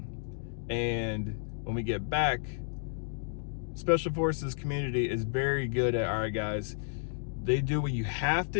And when we get back, Special Forces community is very good at, all right, guys, they do what you have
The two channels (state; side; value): silent; right; digital silence